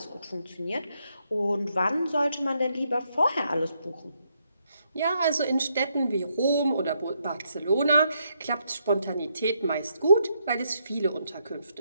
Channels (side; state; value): both; inverted; correlation -0.77